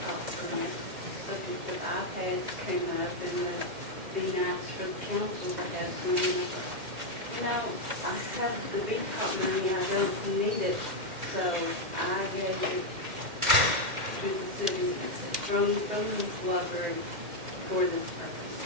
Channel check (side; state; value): left; late; 2.1 ms